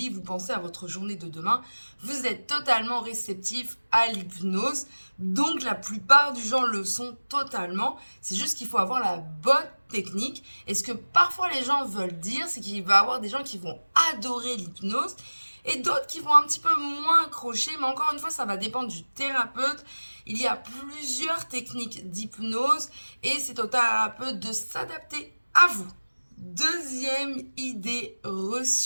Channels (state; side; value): inverted; both; correlation -1.00